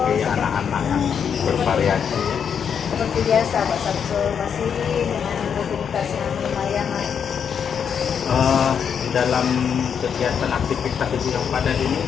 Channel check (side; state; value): right; quieter; 7.4 dB